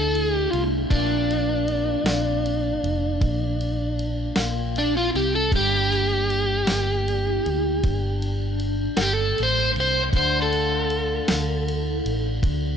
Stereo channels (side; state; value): both; normal; correlation 0.69